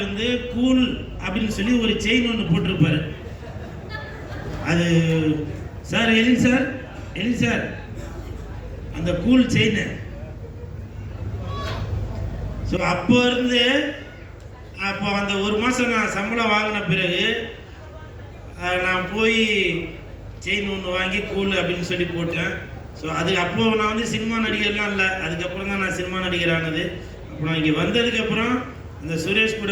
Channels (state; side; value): identical; both; correlation 1.00